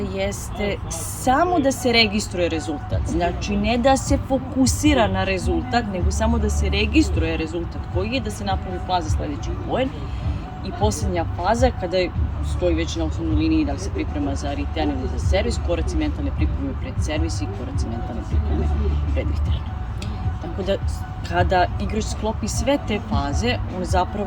samo da se registruje rezultat. Znači, ne da se fokusira na rezultat, nego samo da se registruje rezultat koji je, da se napravi plan za sledeći poen. I poslednja faza, kada stoji već na osnovnoj liniji da li se priprema za return ili za servis, koraci mentalne pripreme pred servis i koraci mentalne pripreme pred return. Tako da, kada igrač sklopi sve te faze, on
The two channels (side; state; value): both; identical; correlation 1.00